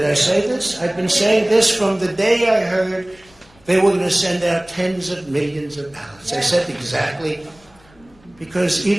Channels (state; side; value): noise; left; rumble, 29 dB below the sound